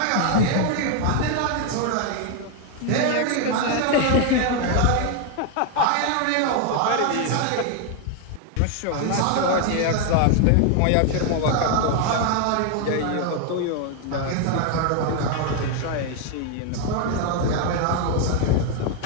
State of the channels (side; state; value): both; different; correlation 0.01